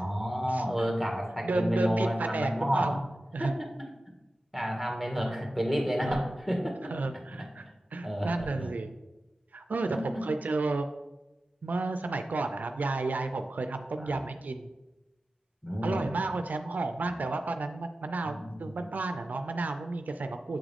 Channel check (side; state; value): both; normal; correlation 0.94